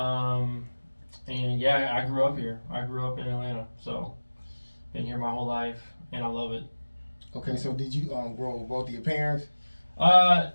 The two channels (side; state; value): both; inverted; correlation -1.00